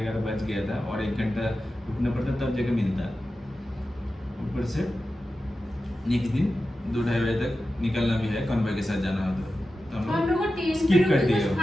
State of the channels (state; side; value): normal; both; correlation 0.92